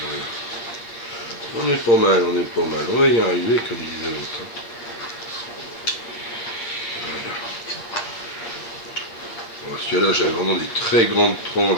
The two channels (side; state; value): right; late; 8.6 ms